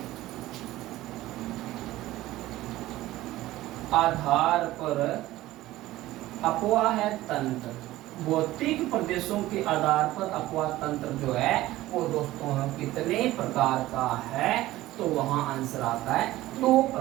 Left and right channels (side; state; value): left; quieter; 16.4 dB